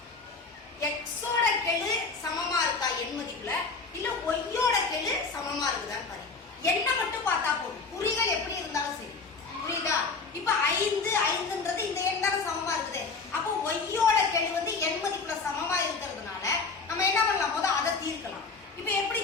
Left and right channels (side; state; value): right; quieter; 4.4 dB